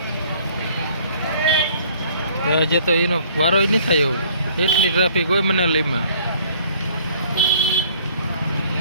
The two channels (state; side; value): inverted; both; correlation -0.57